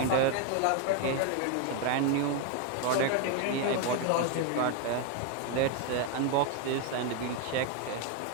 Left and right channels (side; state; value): both; different; correlation 0.01